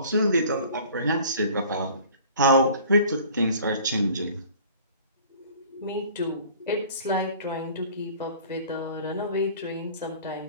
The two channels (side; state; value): both; inverted; correlation -0.48